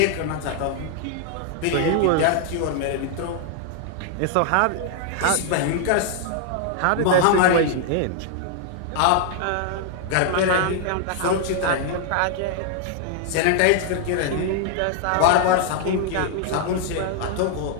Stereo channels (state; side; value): different; both; correlation 0.00